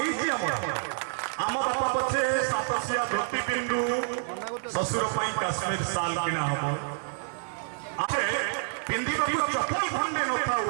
आम बापा पछे सातसिया धोती पिंडू ससुर पई काश्मीर साल किना हबो आछे पिंदिबा को चप्पल खंडे न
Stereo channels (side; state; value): left; silent; 59 dB below the other